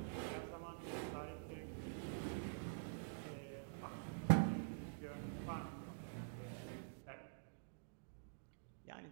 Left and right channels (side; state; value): left; silent; digital silence